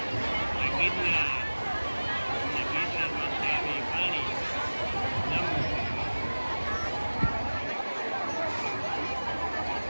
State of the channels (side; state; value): both; inverted; correlation -1.00